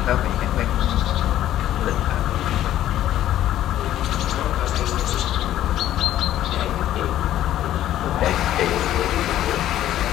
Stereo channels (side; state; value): right; quieter; 12.6 dB